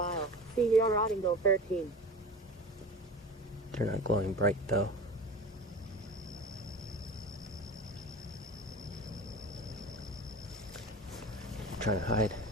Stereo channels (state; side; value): normal; both; correlation 0.35